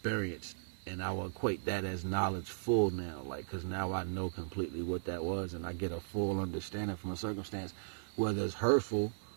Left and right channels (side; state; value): left; silent; 53 dB below the other